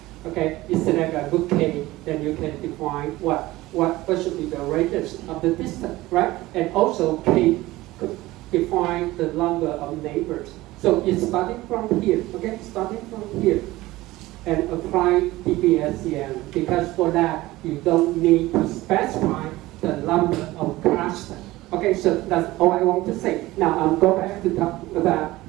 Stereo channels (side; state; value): left; quieter; 18.2 dB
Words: Okay, you select a good K, then you can define what should be the radius of the distance, right? And also K could define the number of neighbors. So it's starting from here, okay? Starting from here. And apply DBSCN, because for that you don't need to specify the number of clusters. Okay, so that's all I want to say. Now I'll go back to talk about